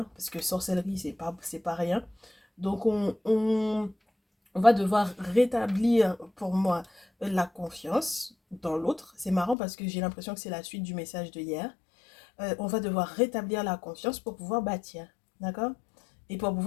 parce que sorcellerie c'est pas rien. Donc on va devoir rétablir pour moi la confiance dans l'autre. C'est marrant parce que j'ai l'impression que c'est la suite du message de hier. On va devoir rétablir la confiance pour pouvoir bâtir, d'accord? Et pour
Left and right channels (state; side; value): drops out; right; at 9.6 s